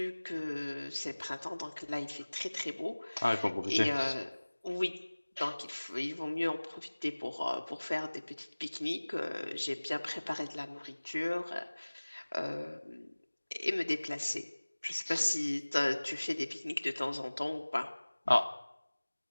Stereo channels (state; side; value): inverted; both; correlation -1.00